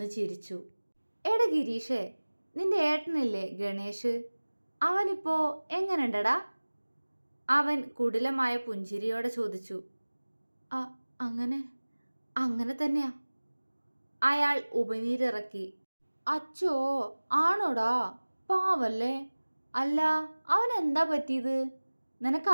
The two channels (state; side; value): inverted; both; correlation -1.00